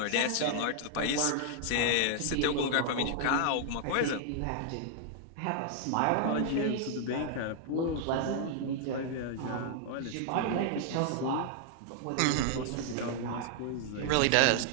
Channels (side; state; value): both; different; correlation 0.00